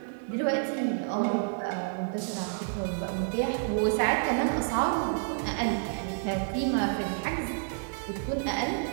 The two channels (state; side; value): silent; left; digital silence